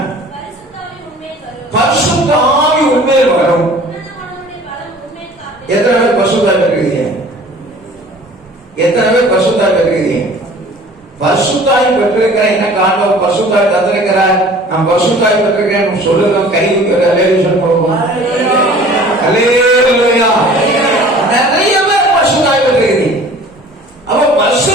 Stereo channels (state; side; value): normal; both; correlation 0.47